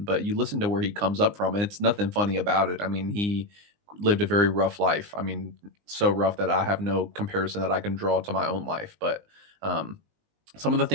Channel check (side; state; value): left; late; 19 ms